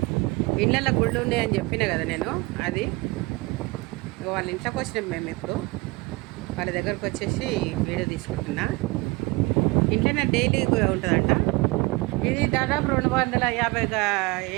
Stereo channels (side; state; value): left; quieter; 24.6 dB